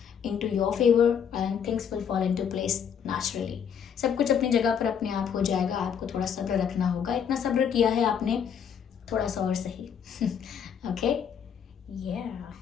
into your favor and things will fall into place naturally. सब कुछ अपनी जगह पर अपने आप हो जाएगा. आपको थोड़ा सब्र रखना होगा. इतना सब्र किया है आपने, थोड़ा सा और सही. ओके,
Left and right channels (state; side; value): quieter; right; 7.8 dB